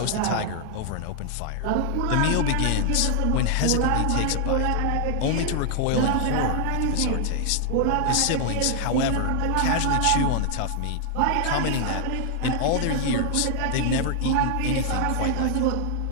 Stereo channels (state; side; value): different; both; correlation 0.00